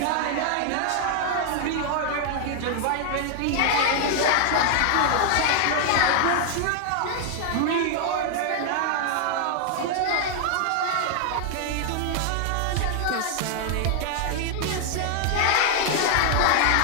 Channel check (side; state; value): both; different; correlation 0.00